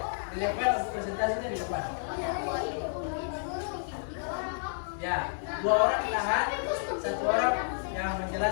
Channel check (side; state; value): right; silent; digital silence